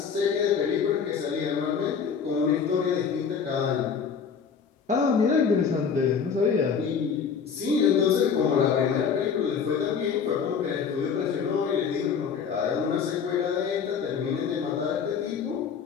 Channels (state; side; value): quieter; right; 6.5 dB